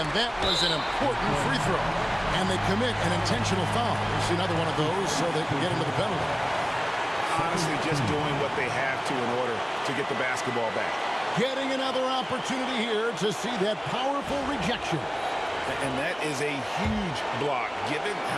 that was an important free throw. And they commit an intentional foul. It's another one of those so they can get into the penalty. Honestly, just doing what they have to in order to get the basketball back. Getting another opportunity here to see that powerful rejection. And that is a huge block. Given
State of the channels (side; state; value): both; identical; correlation 1.00